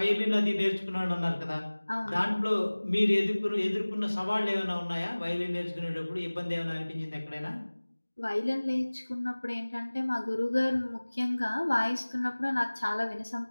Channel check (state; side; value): inverted; both; correlation -1.00